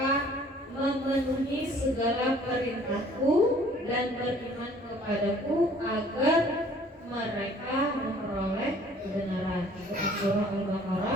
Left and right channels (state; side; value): normal; both; correlation 0.55